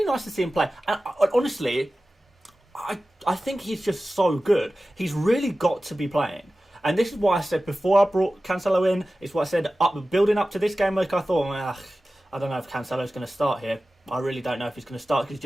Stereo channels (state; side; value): normal; both; correlation 0.95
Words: nice to see him play. And honestly, I think he's just so good. He's really got to be playing. And this is why I said before I brought Cancelo in, it's what I said building up to this game week. I thought, I don't know if Cancelo's going to start here. I really don't know if he's going to start, because he's